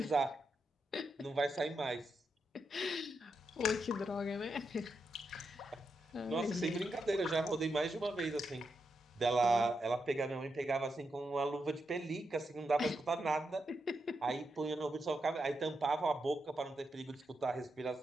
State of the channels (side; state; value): both; normal; correlation 0.85